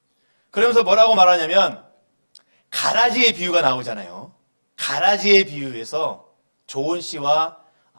그러면서 뭐라고 말하냐면, 가라지의 비유가 나오잖아요. 가라지의 비유에서 좋은 씨와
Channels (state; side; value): inverted; both; correlation -1.00